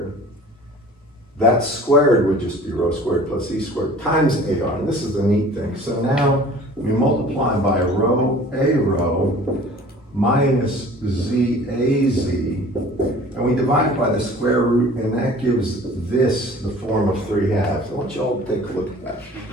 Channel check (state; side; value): normal; both; correlation 0.47